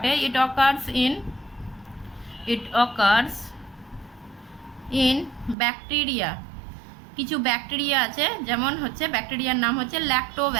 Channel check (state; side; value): drops out; left; at 5.6 s